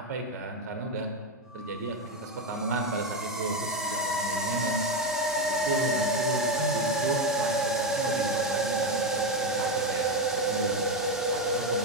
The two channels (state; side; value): normal; both; correlation 0.11